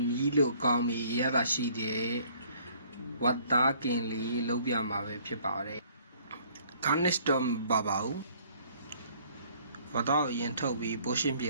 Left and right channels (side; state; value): both; inverted; correlation -0.59